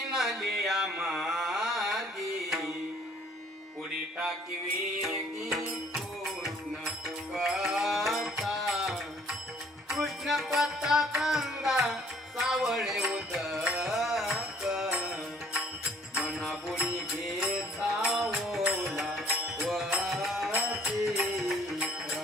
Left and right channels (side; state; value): both; normal; correlation 0.59